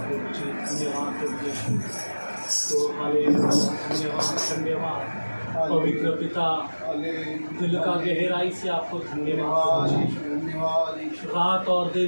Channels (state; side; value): inverted; both; correlation -1.00